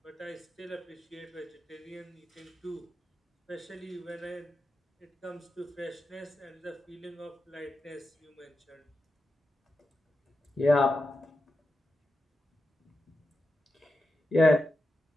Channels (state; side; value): normal; both; correlation 0.89